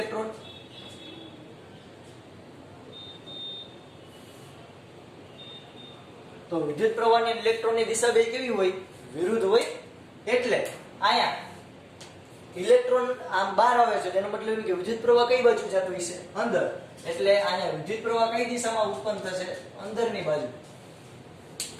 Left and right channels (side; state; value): both; identical; correlation 1.00